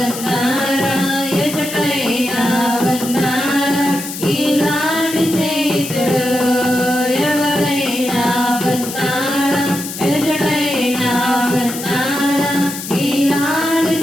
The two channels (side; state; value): left; noise; hiss, 9 dB below the sound